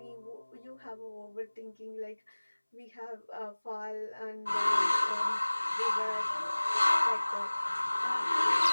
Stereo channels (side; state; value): both; inverted; correlation -1.00